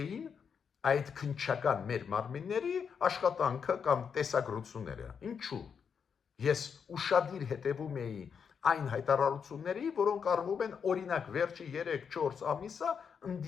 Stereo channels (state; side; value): quieter; right; 6.7 dB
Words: այդ քննչական մեր մարմինների աշխատանքը կամ տեսագրությունները։ Ինչու՞։ Ես ուշադիր հետևում էի այն հայտարարությունների, որոնք արվում են օրինակ վերջի 3-4 ամիսը